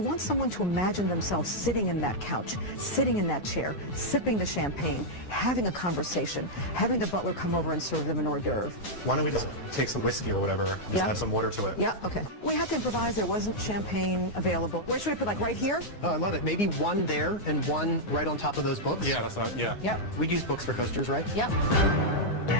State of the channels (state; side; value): late; right; 9.7 ms